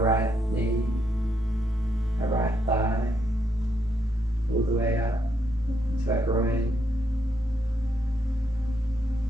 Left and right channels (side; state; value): both; normal; correlation 0.77